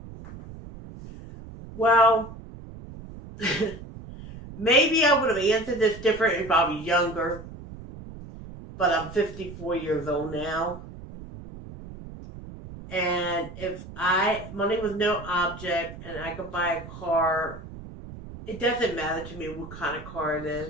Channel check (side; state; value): right; noise; rumble, 14 dB below the sound